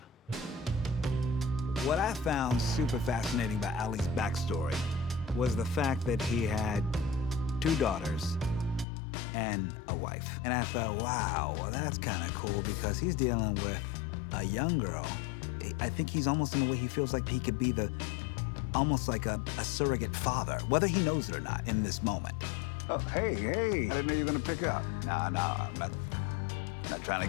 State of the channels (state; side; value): drops out; right; at 8.8 s